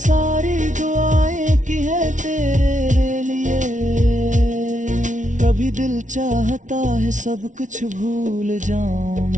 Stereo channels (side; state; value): left; late; 0.37 ms